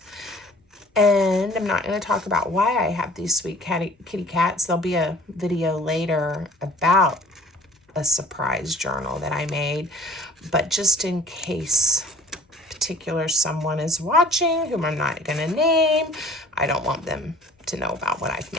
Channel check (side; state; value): both; normal; correlation 0.50